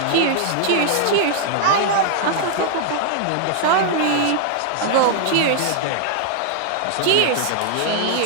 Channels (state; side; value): different; both; correlation 0.00